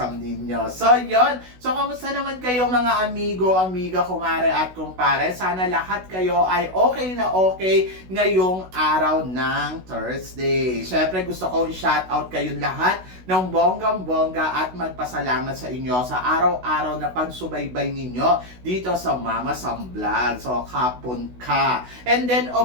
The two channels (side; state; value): left; late; 16 ms